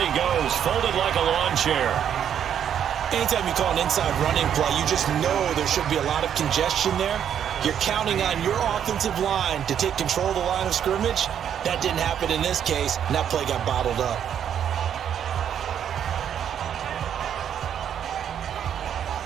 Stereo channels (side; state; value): left; quieter; 9.1 dB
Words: goes, folded like a lawn chair. Anytime you call an inside running play, you just know there should be a lot of congestion there. You're counting on your offensive line to take control of the line of scrimmage, That didn't happen in this case, and that play got bottled up.